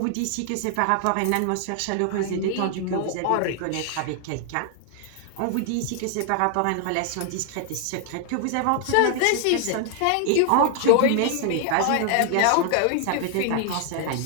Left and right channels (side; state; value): both; different; correlation 0.00